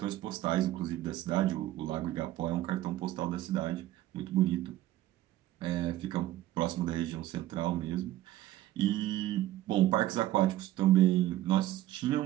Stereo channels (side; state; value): left; quieter; 14.8 dB